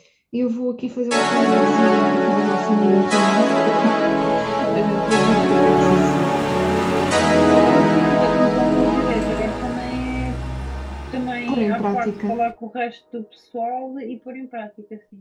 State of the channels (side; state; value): both; identical; correlation 1.00